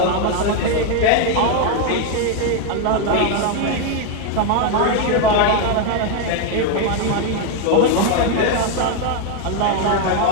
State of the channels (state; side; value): different; both; correlation 0.01